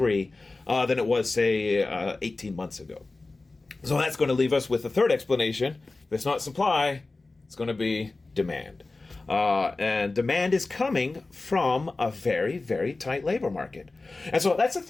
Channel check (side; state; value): right; quieter; 3.4 dB